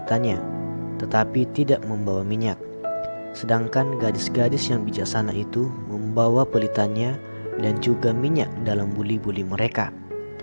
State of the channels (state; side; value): inverted; both; correlation -1.00